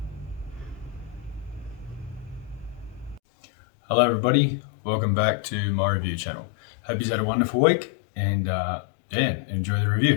Hello everybody, welcome back to my review channel. Hope you've had a wonderful week and enjoy the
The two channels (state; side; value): drops out; right; at 3.2 s